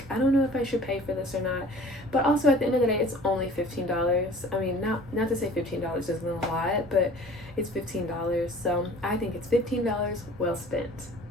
I don't know if I should pay for this or not. But also at the end of the day, it's only $15. I mean, not to say $15 isn't a lot, but it's $15. So I think it's $15 well spent.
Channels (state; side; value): normal; both; correlation 0.47